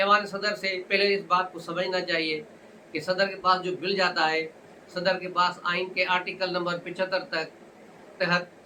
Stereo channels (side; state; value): both; identical; correlation 1.00